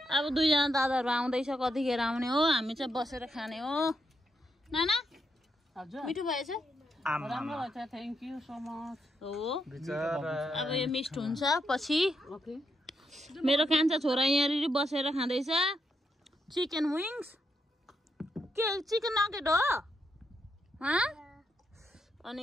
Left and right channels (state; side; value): normal; both; correlation 0.81